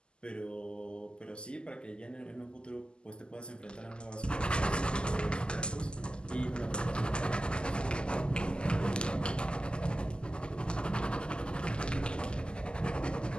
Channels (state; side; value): late; right; 0.049 ms